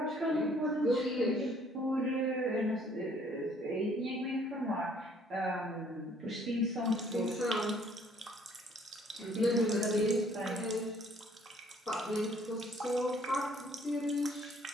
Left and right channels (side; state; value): both; normal; correlation 0.61